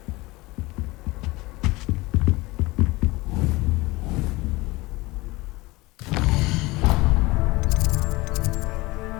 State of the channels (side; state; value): right; quieter; 21.7 dB